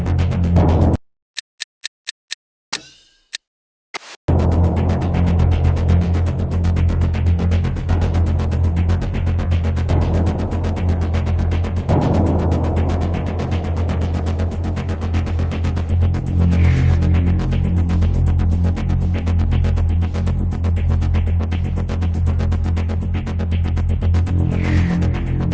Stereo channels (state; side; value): identical; both; correlation 1.00